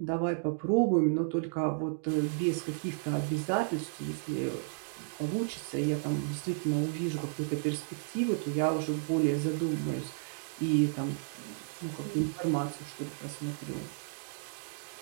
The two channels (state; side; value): silent; left; digital silence